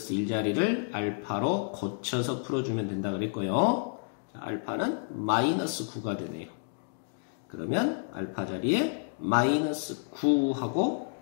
1자리를 알파로 고쳐서 풀어주면 된다 그랬고요. 자, 알파는 마이너스 9가 되네요. 그러면 알파 자리에 마이너스 9 하고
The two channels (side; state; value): right; silent; digital silence